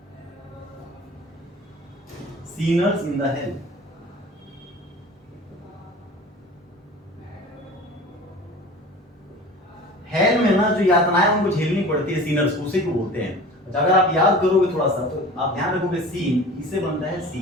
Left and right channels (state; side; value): normal; both; correlation 0.40